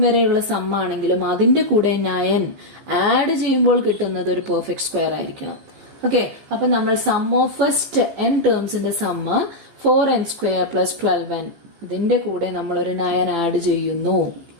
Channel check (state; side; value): late; left; 15 ms